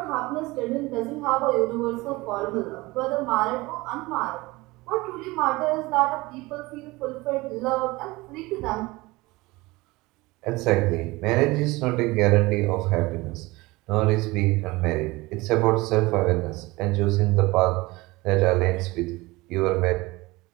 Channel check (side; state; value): left; quieter; 21.7 dB